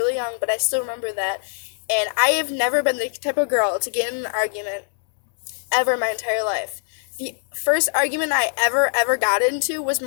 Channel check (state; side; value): silent; right; digital silence